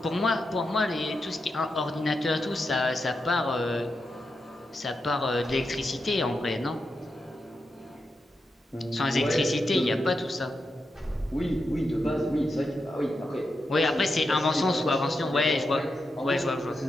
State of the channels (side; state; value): both; normal; correlation 0.87